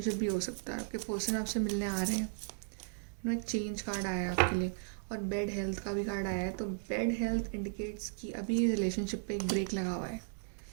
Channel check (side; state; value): left; silent; digital silence